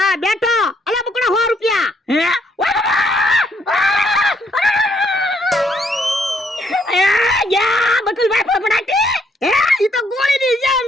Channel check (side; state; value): both; normal; correlation 0.71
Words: બેઠો. અલ્યા બકુડા 100 રૂપિયા. બકુલભાઈ ફફડાટી. હે ઈ તો ગોળીની જેમ